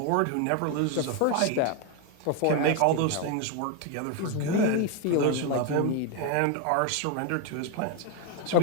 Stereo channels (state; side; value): different; both; correlation 0.01